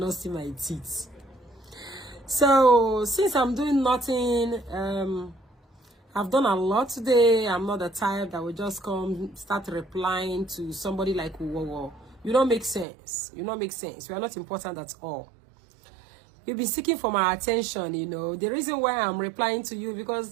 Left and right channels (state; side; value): drops out; left; at 12.9 s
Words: see my teeth. So since I'm doing nothing, I've done a lot today. I'm not the type that will just come start replying to somebody like whoa. You don't make sense. You don't make sense. You are not important at all. You'll be seeking for my attention, you know. The reason why I'm replying to you